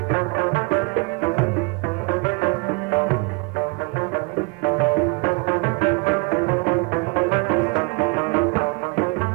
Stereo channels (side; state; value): left; quieter; 30.7 dB